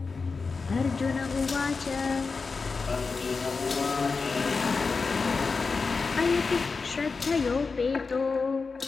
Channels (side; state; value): right; quieter; 4.5 dB